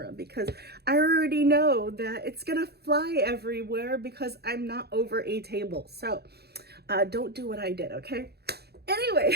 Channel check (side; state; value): left; late; 0.47 ms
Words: because I already know that it's gonna fly everywhere because I'm not over a table. So don't do what I did, okay?